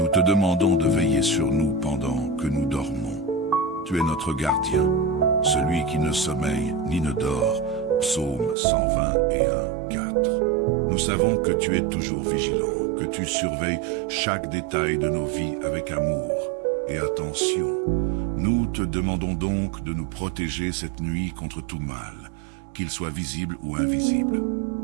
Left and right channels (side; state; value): left; drops out; at 8.6 s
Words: te demandons de veiller sur nous pendant que nous dormons. Tu es notre gardien, celui qui ne sommeille ni ne dort. Psaume 121, 4. Nous savons que tu es toujours vigilant, que tu surveilles chaque détail de nos vies avec amour et attention. Nous te demandons donc de nous protéger cette nuit contre tout mal, qu'il soit visible ou invisible.